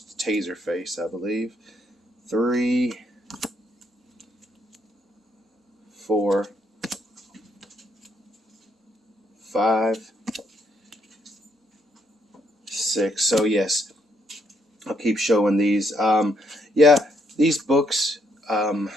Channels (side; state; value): both; normal; correlation 0.73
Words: Taser face, I believe. 3, 4, 5, 6. So yes, I'll keep showing these. Yeah, these books, I